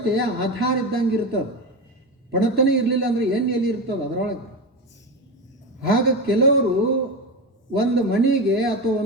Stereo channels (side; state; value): both; normal; correlation 0.19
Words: ಆಧಾರ ಇದ್ದಂಗೆ ಇರ್ತದೆ. ಪಣತನೇ ಇರಲಿಲ್ಲ ಅಂದರೆ ಎಣ್ಣೆ ಎಲ್ಲಿ ಇರ್ತದೆ ಅದರೊಳಗೆ. ಆಗ ಕೆಲವರು ಒಂದು ಮನೆಗೆ ಅಥವಾ